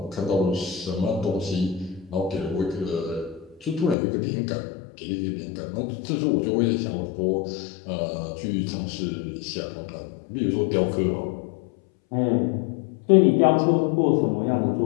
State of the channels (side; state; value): right; drops out; at 4.0 s